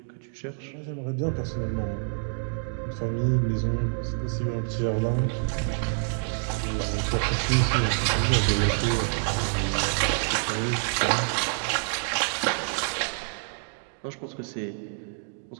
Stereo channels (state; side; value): silent; left; 60 dB below the other